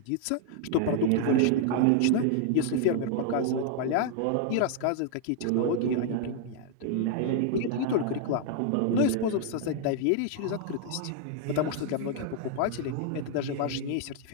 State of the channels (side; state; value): both; different; correlation -0.01